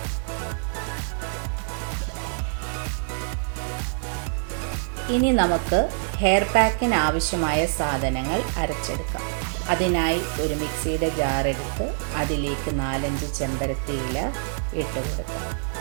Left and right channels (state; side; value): silent; left; digital silence